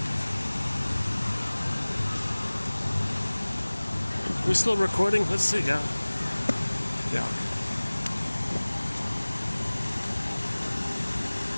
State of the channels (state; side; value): inverted; both; correlation -1.00